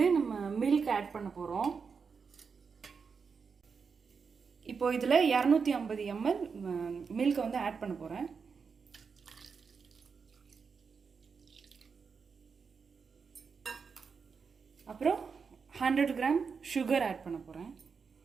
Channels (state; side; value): quieter; left; 5.6 dB